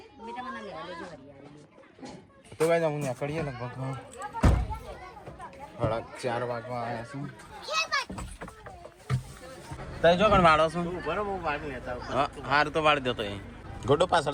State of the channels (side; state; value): both; identical; correlation 1.00